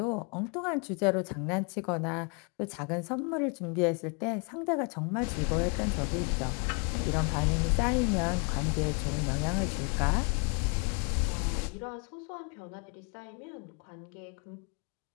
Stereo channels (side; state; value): right; quieter; 35.6 dB